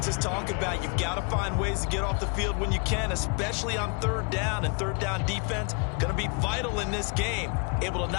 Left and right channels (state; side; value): quieter; right; 36.2 dB